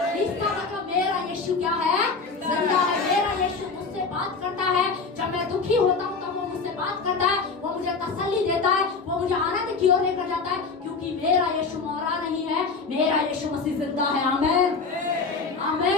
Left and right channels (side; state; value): right; quieter; 4.5 dB